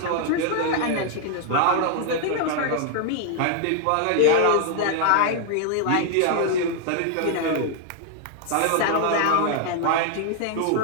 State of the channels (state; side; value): different; both; correlation 0.00